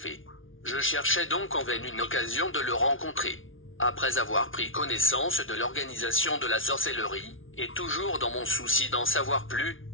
Je cherchais donc en vain une occasion de le rencontrer. Après avoir pris connaissance de l'organisation de la sorcellerie, et toujours dans mon souci d'en savoir plus,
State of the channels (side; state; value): right; late; 0.57 ms